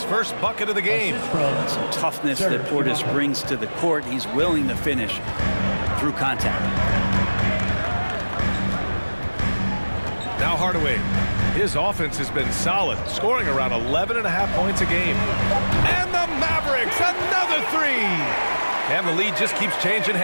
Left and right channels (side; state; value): both; inverted; correlation -1.00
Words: first bucket of the game. Some toughness that Portis brings to the court. He's willing to finish through contact. Now Hardaway. His offense has been solid, scoring around 11.5 points a game. And the Mavericks, another three. And the lead just keeps changing